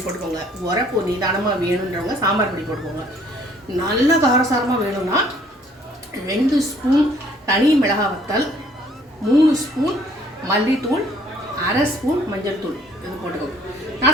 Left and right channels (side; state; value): both; normal; correlation 0.60